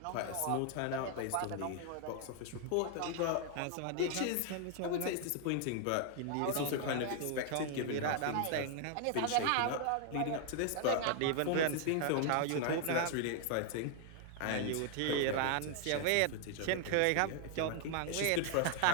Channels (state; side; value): different; both; correlation 0.00